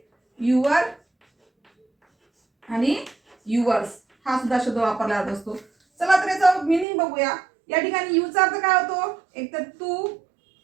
युअर आणि युअर्स हा सुद्धा शब्द वापरला जात असतो. चला तर याचा मिनिंग बघूया. या ठिकाणी यूचा अर्थ काय होतो? एक तर तू,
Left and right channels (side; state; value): left; drops out; at 6.9 s